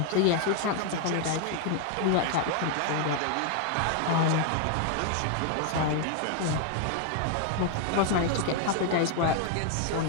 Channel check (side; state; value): both; different; correlation 0.00